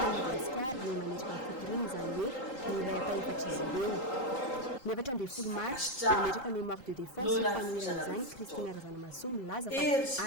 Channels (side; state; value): right; late; 3.8 ms